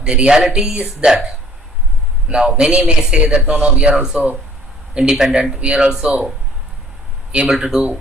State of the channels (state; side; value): normal; both; correlation 0.56